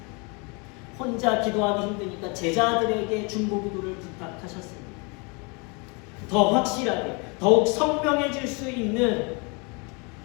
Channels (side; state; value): right; quieter; 31.3 dB